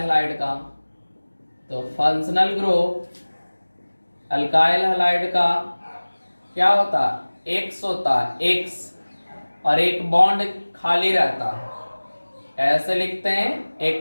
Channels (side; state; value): both; inverted; correlation -1.00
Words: का, तो फंक्शनल ग्रुप अल्काइल हैलाइड का क्या होता है? एक्स होता है, एक्स, और एक बॉन्ड खाली रहता है। ऐसे लिखते हैं,